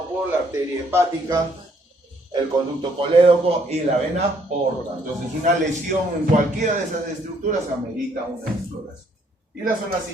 por la arteria hepática, el conducto colédoco y la vena porta. Entonces una lesión en cualquiera de esas estructuras amerita una exploración. Y las zonas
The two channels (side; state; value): both; normal; correlation 0.67